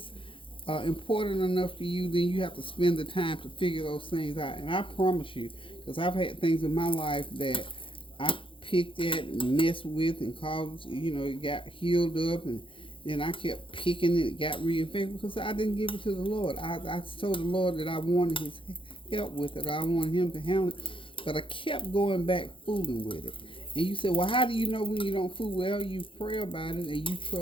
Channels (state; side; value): late; right; 0.25 ms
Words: important enough to you, then you have to spend the time to figure those things out. And I promise you, because I've had things in my life that I picked at and messed with and caused, it got healed up, and then I kept picking it, got reinfected because I didn't give it to the Lord. I told the Lord that I wanted His help with it, or I wanted Him to handle it, but I kept going back fooling with it. And you say, well, how do you know when you don't fool? Well, you pray about it and you